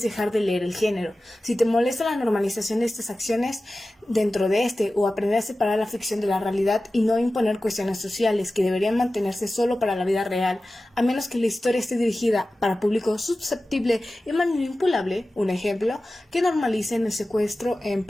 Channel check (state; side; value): normal; both; correlation 0.95